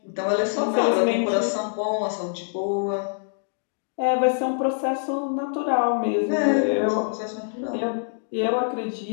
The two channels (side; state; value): right; silent; digital silence